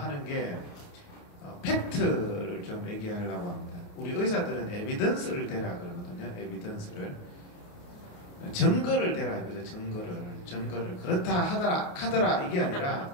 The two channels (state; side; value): late; right; 28 ms